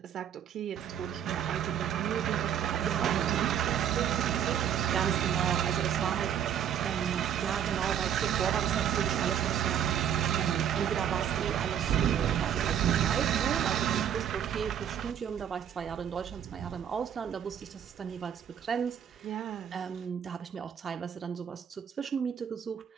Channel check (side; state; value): left; quieter; 9.1 dB